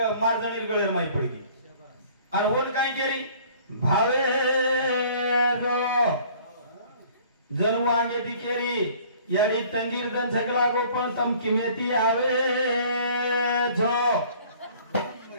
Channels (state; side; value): inverted; both; correlation -0.53